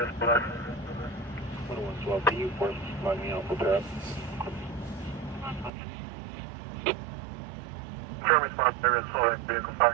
black. 112, can you force line me out for that? Current response, area's full, vehicle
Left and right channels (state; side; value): drops out; left; at 5.7 s